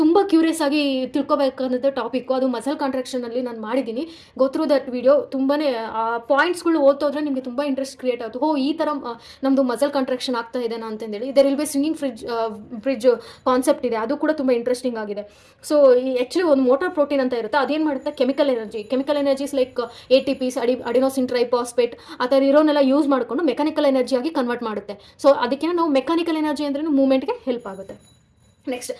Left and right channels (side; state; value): both; identical; correlation 1.00